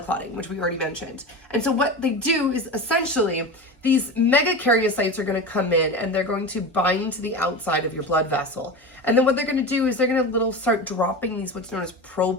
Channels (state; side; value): normal; both; correlation 0.26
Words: clotting, which we already mentioned. And so what they do is essentially these megakaryocytes are going to come in and they're going to bind to the outside of your blood vessel. And then what they're going to do is they're going to start dropping these what's known as